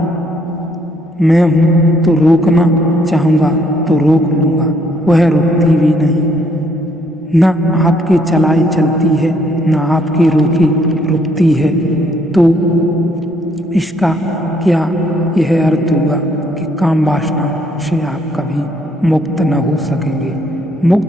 मैं हूँ तो रोकना चाहूँगा तो रोक लूँगा, वह रुकती भी नहीं। न आपके चलाई चलती है, न आपके रोकी रुकती है। तो इसका क्या यह अर्थ हुआ कि काम वासना से आप कभी मुक्त न हो सकेंगे?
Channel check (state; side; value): normal; both; correlation 0.68